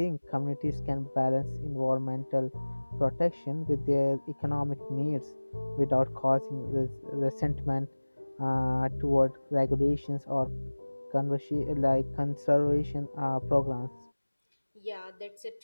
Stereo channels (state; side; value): inverted; both; correlation -1.00